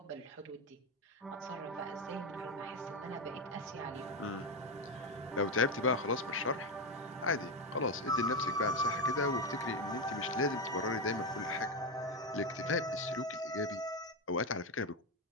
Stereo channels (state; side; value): normal; both; correlation 0.11